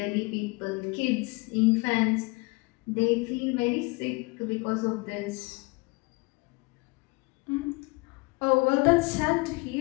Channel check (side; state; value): right; quieter; 26.6 dB